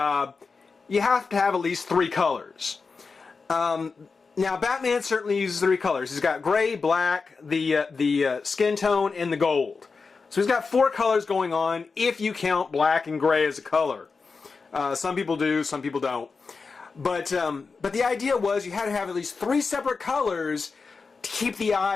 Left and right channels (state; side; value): quieter; right; 4.7 dB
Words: you have to have at least 3 colors. Now, Batman certainly uses 3 colors. He's got gray, black, the skin tone, and the gold. So he's got 4 colors going on if you count black and gray as a color. Some people do, some people don't. But the idea was you had to have at least 3 separate colors to keep the